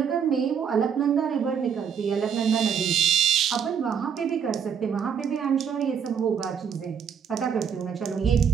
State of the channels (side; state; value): left; quieter; 7.5 dB